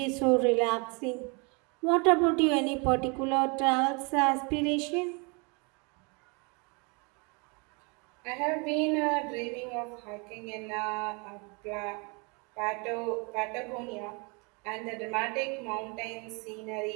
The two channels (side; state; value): left; quieter; 32.0 dB